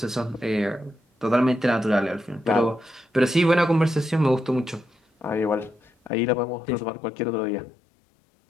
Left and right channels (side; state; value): right; drops out; at 6.1 s